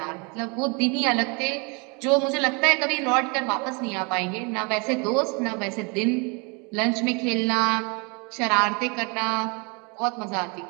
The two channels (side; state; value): left; quieter; 31.4 dB